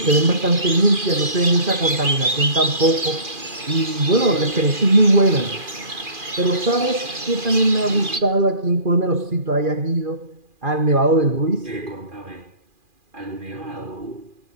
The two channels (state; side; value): late; left; 2.4 ms